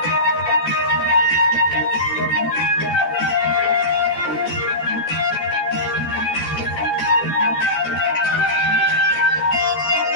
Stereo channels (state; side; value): late; right; 14 ms